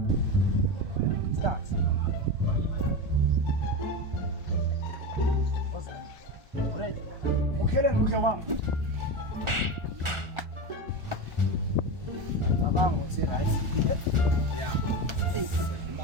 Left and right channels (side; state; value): left; late; 1.4 ms